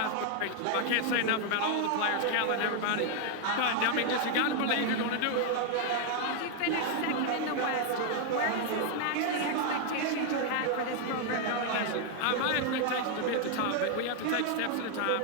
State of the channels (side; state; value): both; different; correlation 0.00